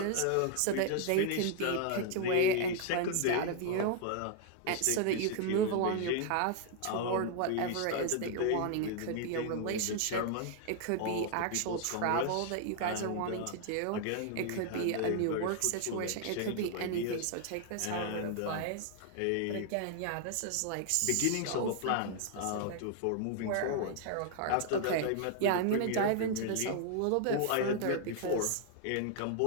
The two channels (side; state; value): both; different; correlation 0.00